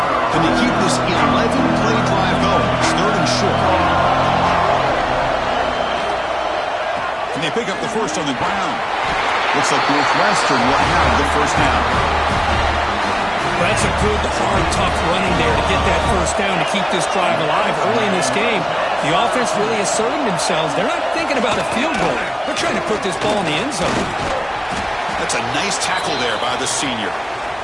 Can they keep this 11-play drive going? It's 3rd and short. Can they pick up the first on the ground? Looks like Northwestern will have the first down. That's a good, hard, tough running there to get that first down to keep this drive alive. Early in this game, the offense really asserting themselves. They're not thinking about a field goal. They're trying to put this ball in the end zone. That's a nice tackle there by the senior.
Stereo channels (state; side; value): identical; both; correlation 1.00